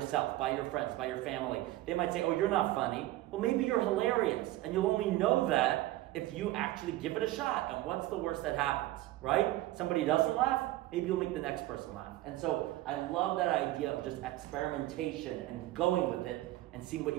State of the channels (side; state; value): left; quieter; 16.4 dB